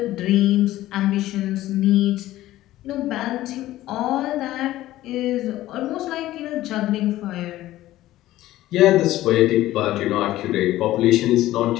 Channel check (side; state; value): right; quieter; 15.2 dB